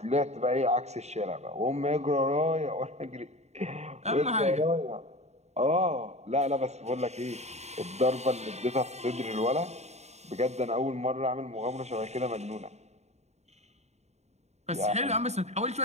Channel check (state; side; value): late; left; 0.32 ms